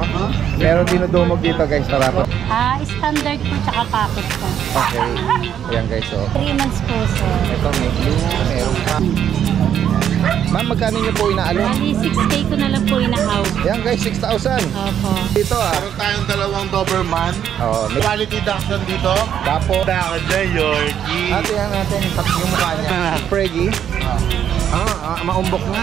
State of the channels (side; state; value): left; quieter; 9.4 dB